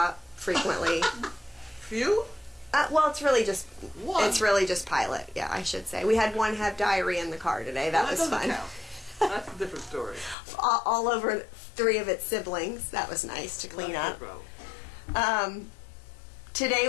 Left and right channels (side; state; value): right; drops out; at 10.4 s